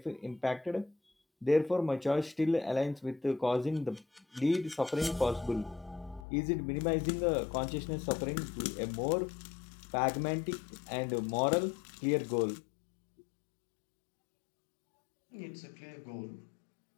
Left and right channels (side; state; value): right; drops out; at 6.2 s